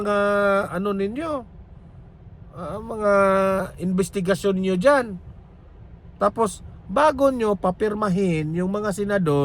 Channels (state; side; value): identical; both; correlation 1.00